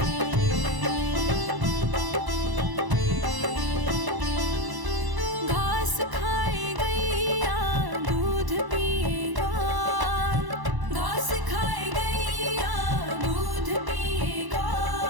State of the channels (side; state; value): left; late; 1.0 ms